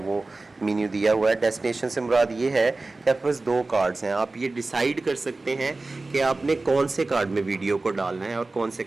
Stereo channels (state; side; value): quieter; left; 3.3 dB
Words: मेन्यू दिया हुआ है। डेस्टिनेशन से मुराद ये है कि आपके पास दो कार्ड्स हैं, आप ये डिसाइड कर सकते हैं कि आपने कौन से कार्ड में वीडियो को डालना है और कौन से